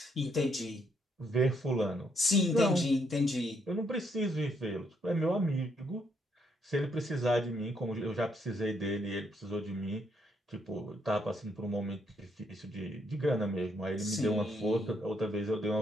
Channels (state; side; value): normal; both; correlation 0.73